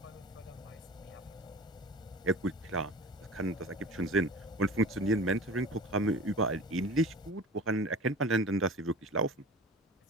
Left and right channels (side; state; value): both; normal; correlation 0.38